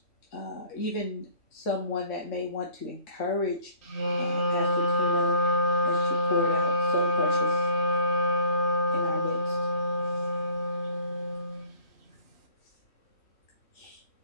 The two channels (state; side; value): late; right; 3.1 ms